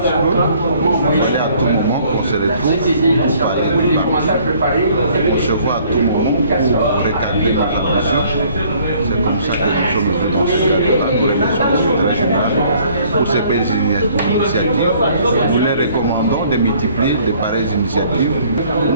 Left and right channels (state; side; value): inverted; both; correlation -0.59